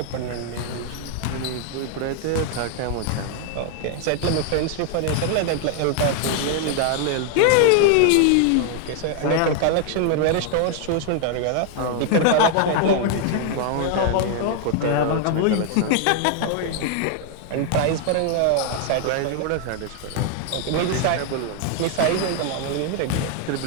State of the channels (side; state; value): both; different; correlation 0.00